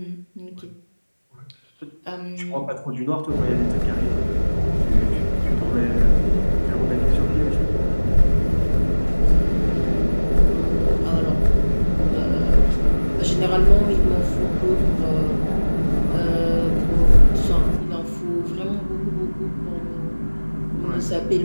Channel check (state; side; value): inverted; both; correlation -1.00